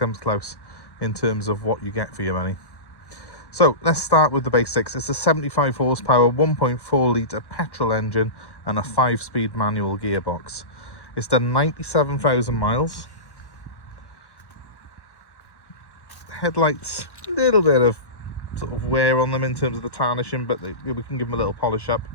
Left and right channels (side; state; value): right; late; 1.1 ms